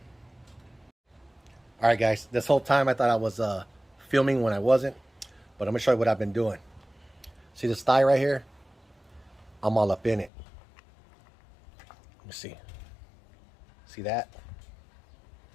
All right, guys. This whole time I thought I was filming when I wasn't, but I'm gonna show you what I've been doing. See this thigh right here? I'm all up in it. Let me see. See that?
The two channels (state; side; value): drops out; right; at 10.3 s